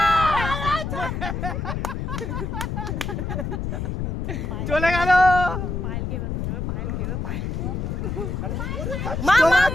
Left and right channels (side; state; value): left; noise; rumble, 3 dB below the sound